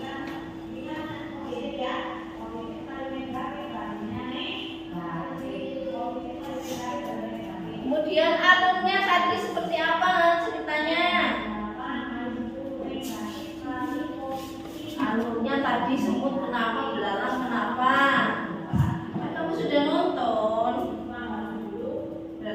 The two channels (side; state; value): both; identical; correlation 1.00